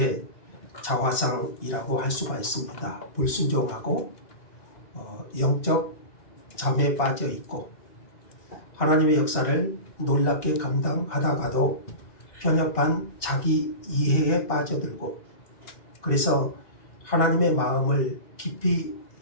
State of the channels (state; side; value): late; right; 2.8 ms